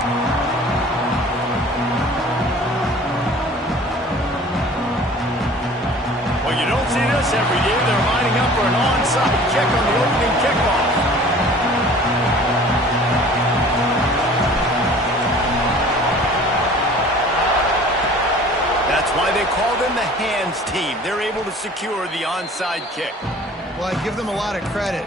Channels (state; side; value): normal; both; correlation 0.47